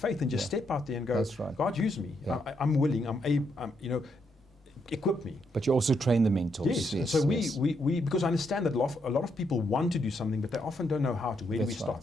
and just step out there and go, That's right. God, use me. Yeah. I'm willing. I'm equip me. But you also train the mentors. Yes. Yes. So yes. we because I understand that a lot of people want to do something, but they often don't know how to. Where do we That's start?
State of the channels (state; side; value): normal; both; correlation 0.78